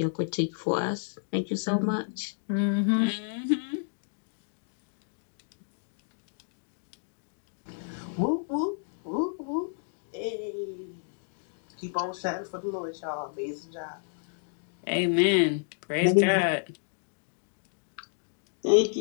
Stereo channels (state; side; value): silent; right; digital silence